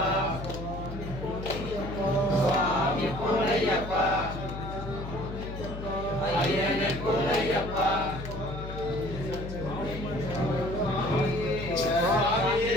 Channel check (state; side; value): noise; left; hum, 8 dB below the sound